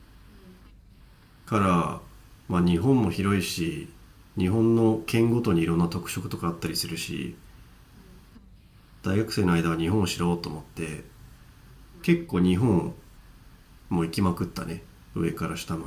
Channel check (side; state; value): both; identical; correlation 1.00